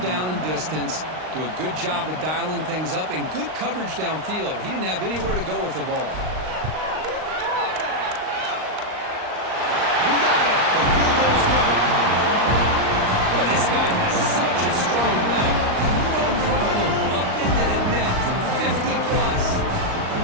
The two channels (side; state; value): left; late; 38 ms